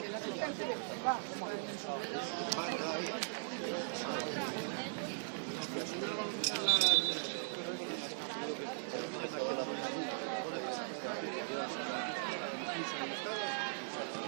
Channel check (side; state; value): left; silent; digital silence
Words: la asistente, va.